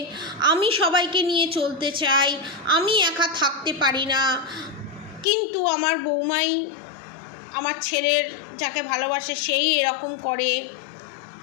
আমি সবাইকে নিয়ে চলতে চাই, আমি একা থাকতে পারি না, কিন্তু আমার বৌমাই আমার ছেলের যাকে ভালোবাসে সেই এরকম করে।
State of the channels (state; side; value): drops out; right; at 5.2 s